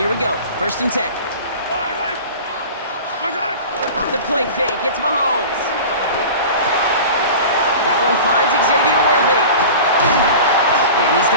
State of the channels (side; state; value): both; inverted; correlation -0.36